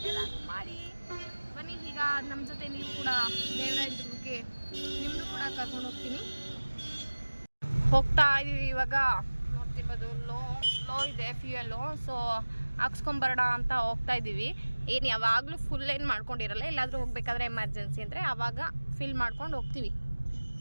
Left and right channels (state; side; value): inverted; both; correlation -1.00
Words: ಎಲ್ಲ ಮಾಡಿ. ಬನ್ನಿ, ಈಗ ನಮ್ಮ ಜೊತೆ ನೀವು ಕೂಡ ದೇವರಾಯನದುರ್ಗಕ್ಕೆ ನಿಮ್ಮದು ಕೂಡ ಕರ್ಕೊಂಡು ಹೋಗ್ತೀನಿ. ಹೋಗ್ತಾ ಇದ್ದೀವಿ ಇವಾಗ. ನೋಡ್ತಿರ್ಬೋದು ಲೋ ಇದೆ ಫ್ಯೂಯಲ್ಲು. ಸೊ ಹಾಕ್ಸ್ಕೊಂಬರೋಣ ಅಂತ ಹೋಗ್ತಾ ಇದ್ದೀವಿ. ಏನು ಯಾವಾಗಲೂ ಫುಲ್ ಏನು ಮಾಡ್ಕೊಂಡಿರಲ್ಲ. ಎಲ್ಲಾದರೂ ಹೋಗ್ಬೇಕಾದ್ರೆ ಎಮರ್ಜೆನ್ಸಿ ಅಂದರೆ ಆವಾಗ ಫಿಲ್ ಮಾಡ್ಕೊಂಡು ಹೋಗ್ತೀವಿ.